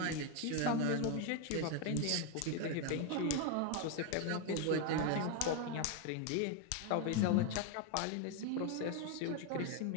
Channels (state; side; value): different; both; correlation 0.01